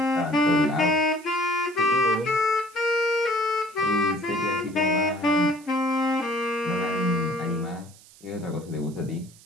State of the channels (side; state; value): right; noise; hiss, 24 dB below the sound